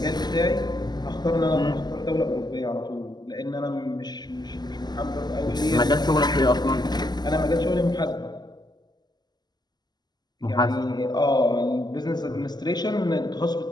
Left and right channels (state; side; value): late; right; 0.20 ms